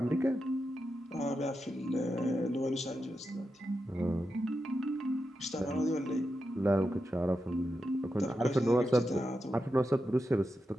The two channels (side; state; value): both; normal; correlation 0.88